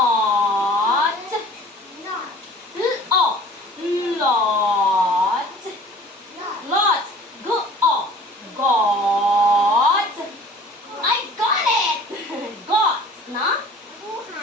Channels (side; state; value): both; normal; correlation 0.47